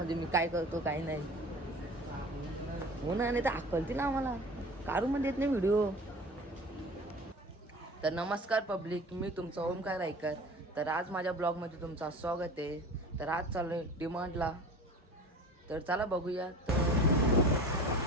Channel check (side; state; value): both; normal; correlation 0.39